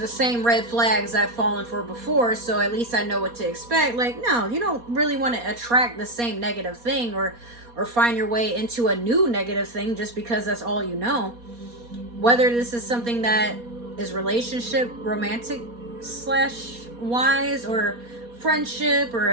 same red flags I've fallen for before, so at least I know what to expect. Like, no, you don't really want to attract the same negative thing or find your way into a new negative thing just because that's all you know. Whether this is something that is relationship, romantic / wise, or friendship, or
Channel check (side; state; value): left; late; 4.2 ms